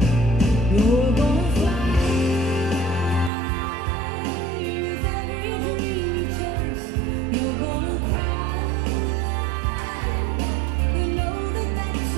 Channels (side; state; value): left; drops out; at 3.3 s